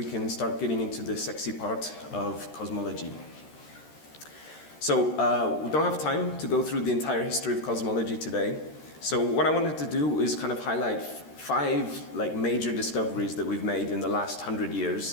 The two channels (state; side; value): late; right; 13 ms